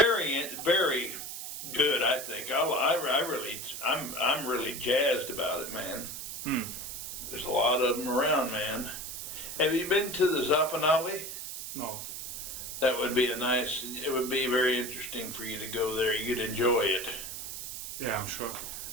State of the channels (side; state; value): right; noise; hiss, 7 dB below the sound